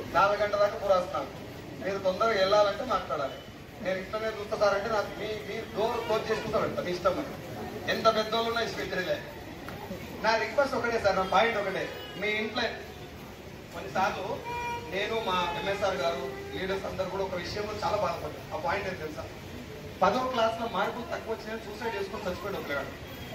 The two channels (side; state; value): both; identical; correlation 1.00